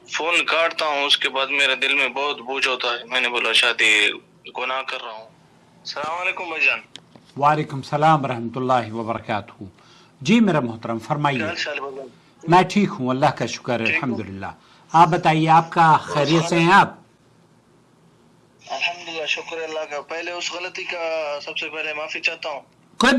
فون کاٹتا ہوں، اس کے بعد میرے دل میں بہت بوجھ ہوتا ہے. میں نے بولا شاید گناہ کر رہا ہوں. السلام علیکم بھائی جان. وعلیکم السلام ورحمۃ اللہ وبرکاتہ. جی میرا محترم کیا فرمائیے. حال چال بھائی جان؟ میں ٹھیک ہوں، اللہ کا شکر ہے، ٹھیک ہو؟ الحمدللہ. آپ بتائیے، آپ کا خیریت سے ہیں آپ؟ الحمدللہ، شکر اللہ کا. پہلے اس غلطی کا سب سے پہلے معافی چاہتا ہوں. کوئی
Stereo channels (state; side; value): identical; both; correlation 1.00